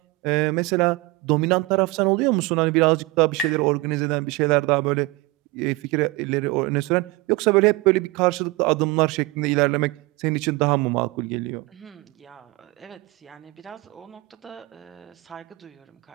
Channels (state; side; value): quieter; left; 21.0 dB